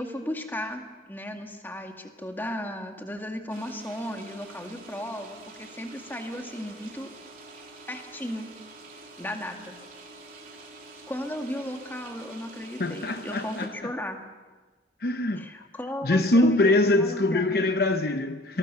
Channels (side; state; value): both; normal; correlation 0.52